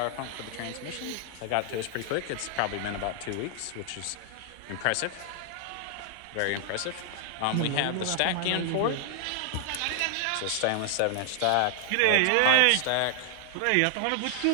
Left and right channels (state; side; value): different; both; correlation 0.00